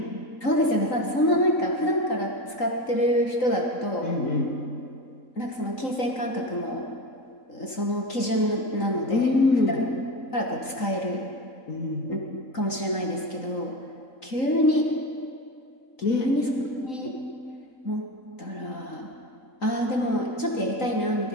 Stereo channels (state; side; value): late; right; 3.9 ms